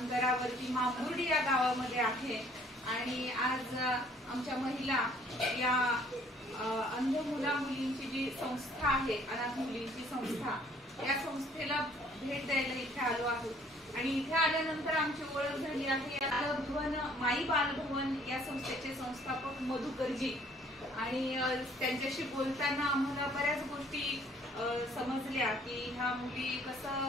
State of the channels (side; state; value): both; normal; correlation 0.59